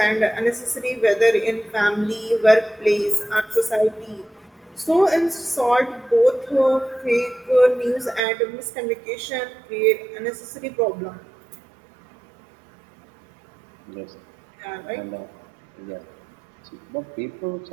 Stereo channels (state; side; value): drops out; left; at 8.2 s